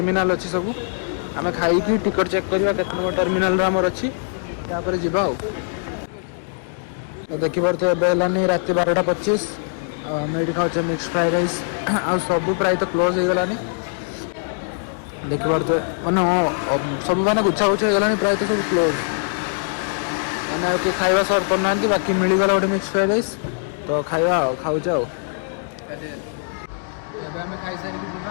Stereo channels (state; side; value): silent; right; digital silence